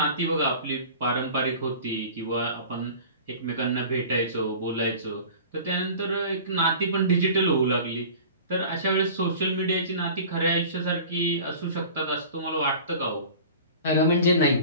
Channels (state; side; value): inverted; both; correlation -0.41